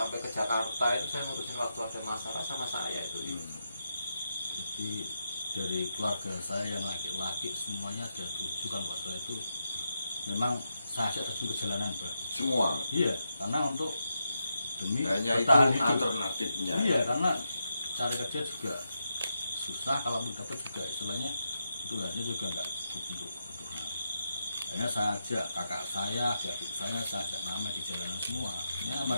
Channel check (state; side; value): inverted; both; correlation -0.85